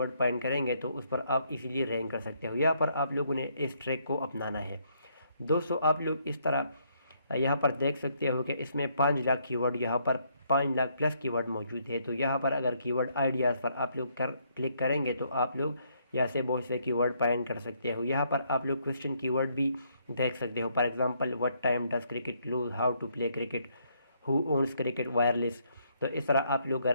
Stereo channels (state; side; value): inverted; both; correlation -0.71